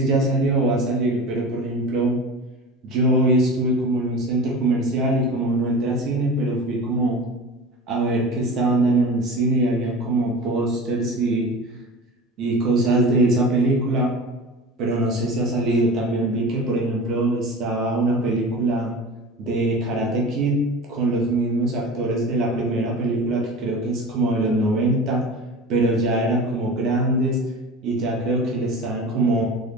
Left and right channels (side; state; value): both; normal; correlation 0.34